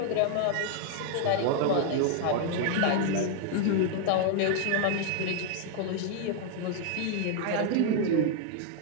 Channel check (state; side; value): different; both; correlation 0.00